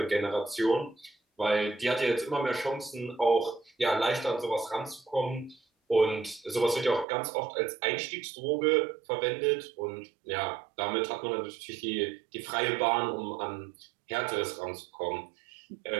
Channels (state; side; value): drops out; left; at 7.1 s